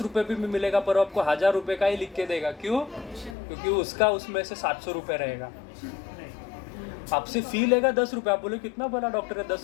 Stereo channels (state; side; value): drops out; right; at 3.4 s